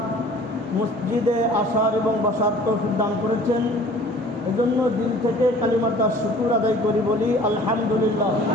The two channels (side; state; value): both; normal; correlation 0.48